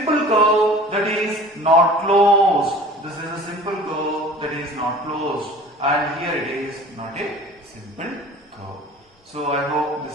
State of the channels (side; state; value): both; normal; correlation 0.44